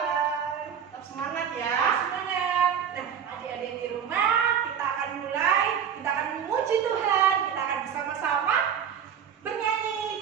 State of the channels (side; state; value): left; quieter; 8.1 dB